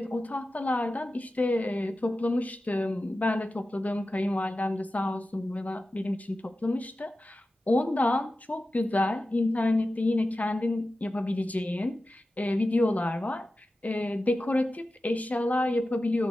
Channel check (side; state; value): both; normal; correlation 0.94